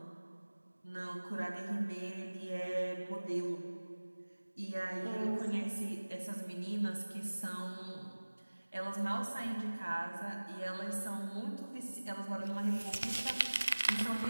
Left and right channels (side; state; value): both; inverted; correlation -1.00